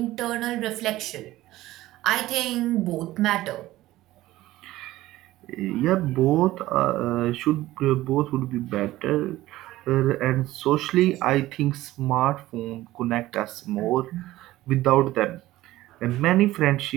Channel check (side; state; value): left; quieter; 16.3 dB